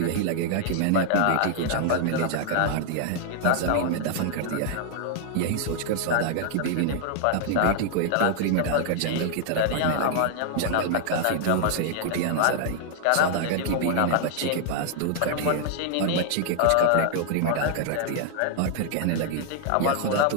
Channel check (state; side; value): different; both; correlation 0.00